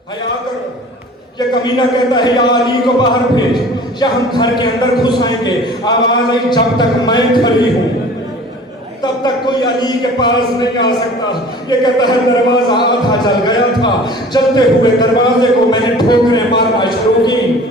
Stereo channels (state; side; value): normal; both; correlation 0.45